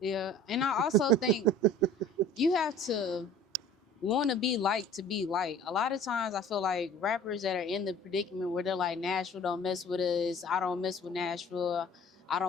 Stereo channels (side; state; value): both; normal; correlation 0.47